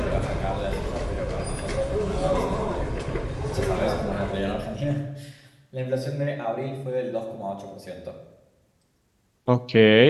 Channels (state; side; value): identical; both; correlation 1.00